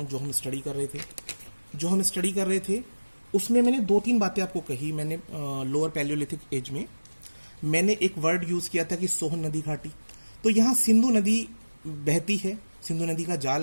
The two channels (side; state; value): both; inverted; correlation -1.00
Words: जो हम स्टडी कर रहे थे उसमें मैंने 2-3 बातें आपको कही। मैंने लोअर पैलियोलिथिक एज में मैंने एक वर्ड यूज किया था कि सोहन नदी घाटी। तो यहाँ सिंधु नदी बहती है, सिंधु नदी का